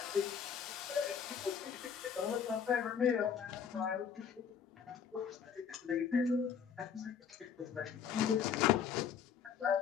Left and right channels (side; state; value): right; quieter; 7.4 dB